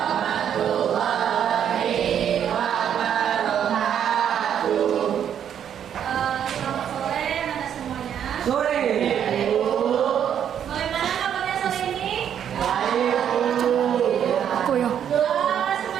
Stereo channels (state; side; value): quieter; left; 9.1 dB